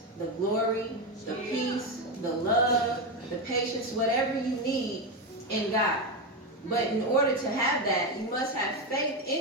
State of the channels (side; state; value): both; normal; correlation 0.11